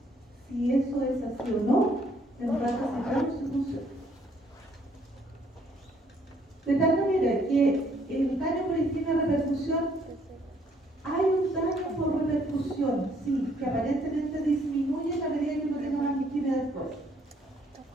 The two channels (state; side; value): normal; both; correlation 0.66